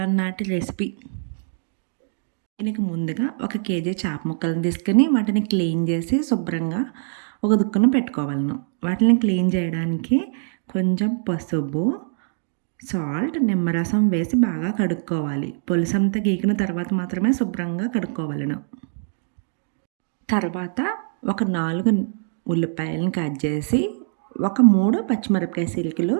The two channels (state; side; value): silent; left; digital silence